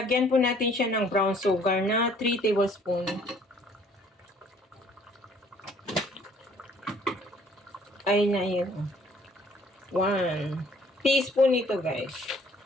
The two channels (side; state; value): both; normal; correlation 0.58